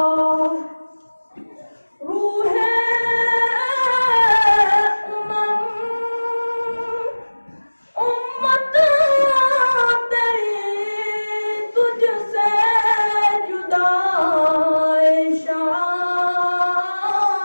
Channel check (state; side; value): inverted; both; correlation -1.00